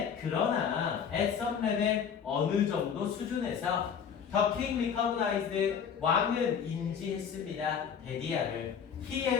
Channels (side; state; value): right; quieter; 7.3 dB